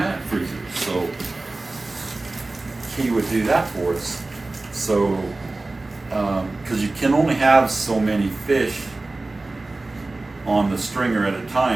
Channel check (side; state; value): left; quieter; 3.1 dB